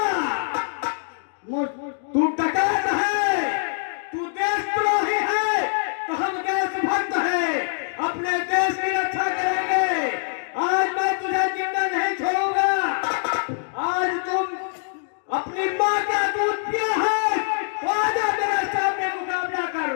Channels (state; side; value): silent; right; 63 dB below the other